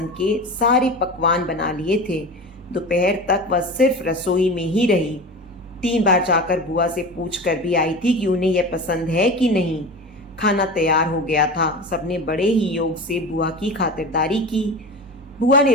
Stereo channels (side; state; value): both; normal; correlation 0.30